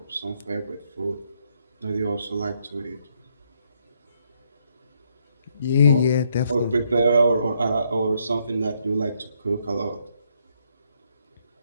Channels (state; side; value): inverted; both; correlation -0.73